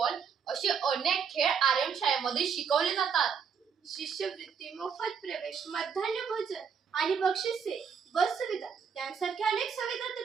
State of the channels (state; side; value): quieter; left; 6.6 dB